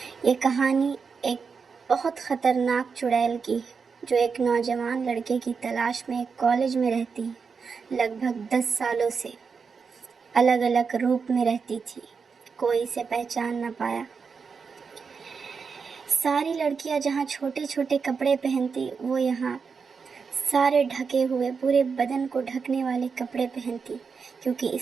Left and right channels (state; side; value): quieter; left; 5.5 dB